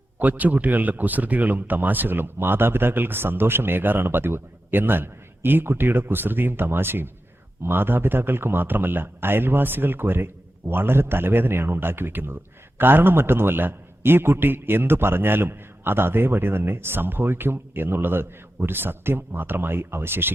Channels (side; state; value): both; normal; correlation 0.91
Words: കൊച്ചുകുട്ടികളുടെ കുസൃതികളും തമാശകളും മാതാപിതാക്കൾക്ക് സന്തോഷമേകാറാണ് പതിവ്. എന്നാൽ ഈ കുട്ടിയുടെ കുസൃതിയും തമാശയും മാതാപിതാക്കൾക്ക് മാത്രമല്ല അയൽവാസികൾക്ക് വരെ വളരെ തലവേദനയാണ് ഉണ്ടാക്കി വെക്കുന്നത്. കാരണം മറ്റൊന്നുമല്ല, ഈ കുട്ടി എന്തു പറഞ്ഞാലും അത് അതേപടി തന്നെ സംഭവിക്കും എന്നുള്ളത് ഒരു സത്യം മാത്രമായി